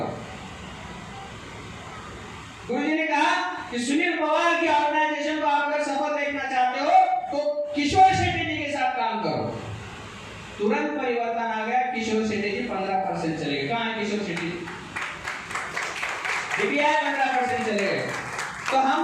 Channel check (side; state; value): both; identical; correlation 1.00